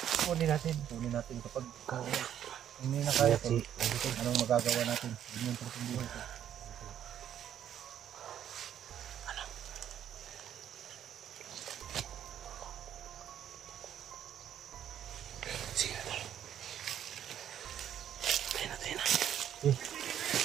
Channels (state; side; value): quieter; left; 10.2 dB